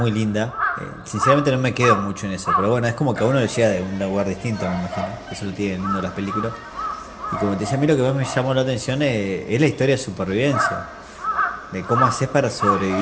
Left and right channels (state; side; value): identical; both; correlation 1.00